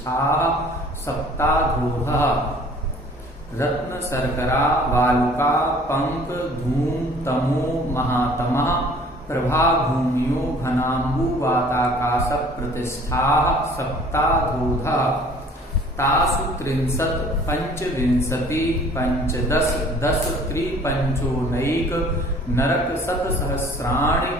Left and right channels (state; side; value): normal; both; correlation 0.52